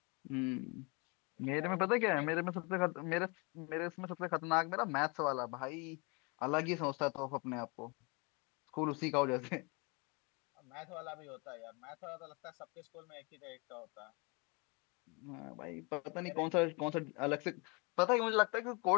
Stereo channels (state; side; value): quieter; right; 30.6 dB